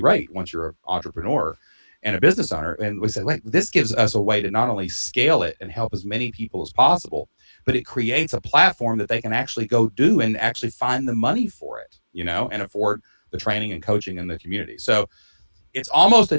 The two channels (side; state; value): both; inverted; correlation -1.00